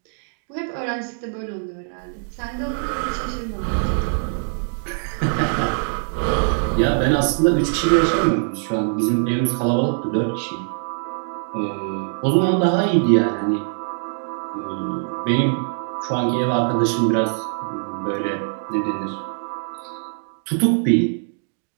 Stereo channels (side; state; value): left; silent; 64 dB below the other